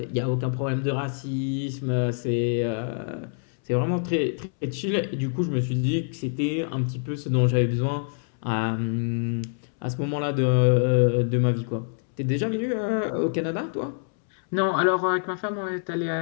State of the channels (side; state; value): right; silent; 61 dB below the other